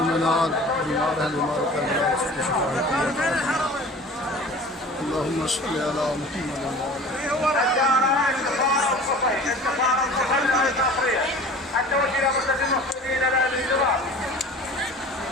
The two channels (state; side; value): normal; both; correlation 0.42